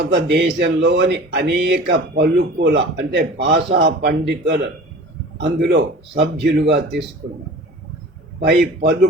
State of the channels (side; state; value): both; normal; correlation 0.41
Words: అనేక పలుకుల అంటే భాషా పండితులు అందులో సభ్యులుగా తీసుకున్నారు. పై